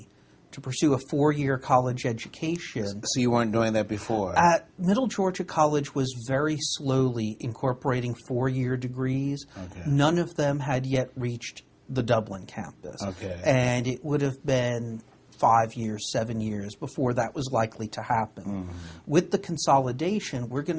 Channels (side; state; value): both; identical; correlation 1.00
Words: to pursue a 4-year college education. So you weren't doing that before? At Middle Georgia College was very slowly incorporating 4-year degrees. Okay. None of them had yet reached the Dublin campus. Okay. And it would have been 5 years, 7 years before that was likely to happen. Mm-hmm. With the consolidation, we're going